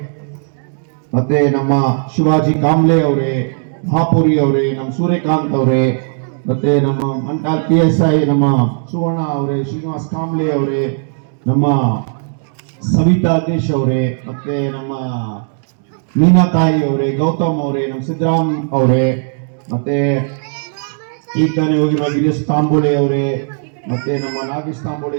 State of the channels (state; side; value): silent; left; digital silence